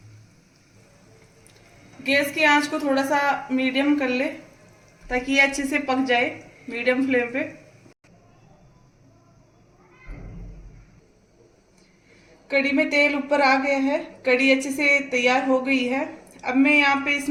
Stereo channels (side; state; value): both; identical; correlation 1.00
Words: गैस की आंच को थोड़ा सा मीडियम कर ले ताकि ये अच्छे से पक जाए मीडियम फ्लेम पे। कड़ी में तेल ऊपर आ गया है, कड़ी अच्छे से तैयार हो गई है। अब मैं यहाँ पे